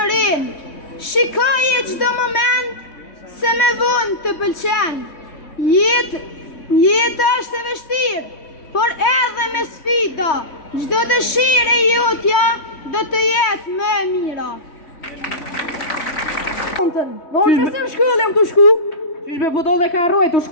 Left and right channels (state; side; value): late; right; 3.2 ms